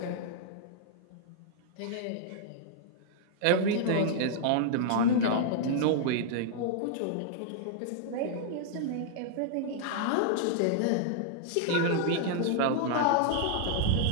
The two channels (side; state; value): both; different; correlation -0.01